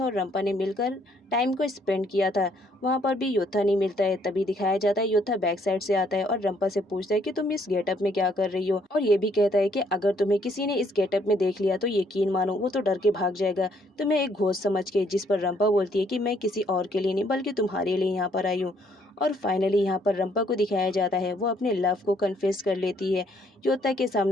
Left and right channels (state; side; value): normal; both; correlation 0.67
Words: और रंपा ने मिलकर टाइम को स्पेंड किया था। वहाँ पर भी योता नहीं मिलता है। तभी दिखाया जाता है योता बैक साइड से आता है और रंपा से पूछता है कि तुम इस गेटअप में क्या कर रही हो, और ये भी कहता है कि अगर तुम्हें किसी ने इस गेटअप में देख लिया तो यकीन मानो वो तो डर के भाग जाएगा, तुम्हें एक घोस्ट समझ के। जिस पर रंपा बोलती है कि मैं किसी और के लिए नहीं बल्कि तुम्हारे लिए यहाँ पर आई हूँ। और फाइनली यहाँ पर रंपा को दिखाया जाता है वो अपने लव को कन्फेस कर लेती है योता के